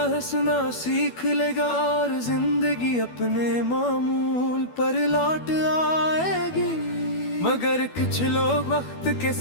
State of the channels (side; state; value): right; late; 12 ms